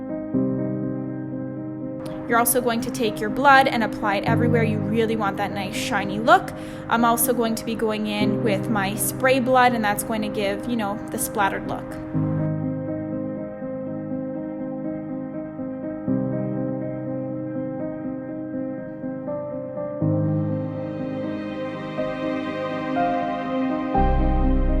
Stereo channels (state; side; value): identical; both; correlation 1.00